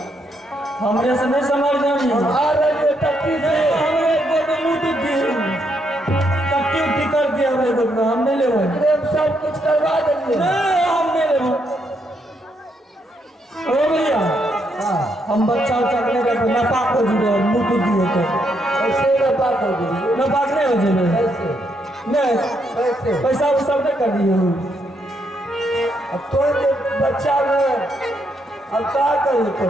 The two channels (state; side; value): normal; both; correlation 0.76